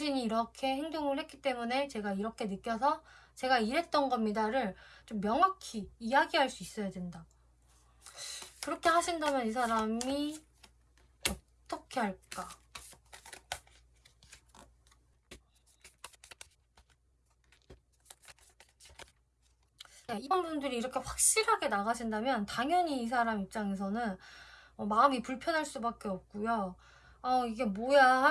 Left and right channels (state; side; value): identical; both; correlation 1.00